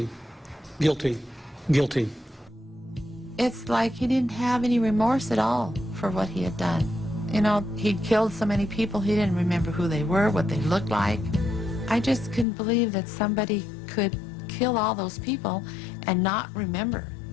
Guilty. Guilty. It's like he didn't have any remorse at all for what he had done. You know, he'd killed so many people, he didn't remember who they were, what they looked like. I just couldn't believe that somebody could kill all those people and not remember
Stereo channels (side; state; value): right; drops out; at 12.5 s